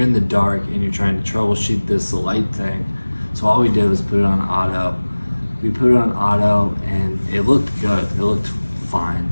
in the dark and you're trying to troubleshoot this light thing. So all we did was put it on auto. We put it on auto, and it looked good. It looked fine,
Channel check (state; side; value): inverted; both; correlation -1.00